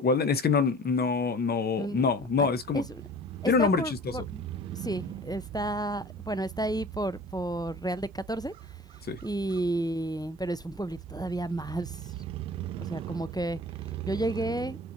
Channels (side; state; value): both; normal; correlation 0.43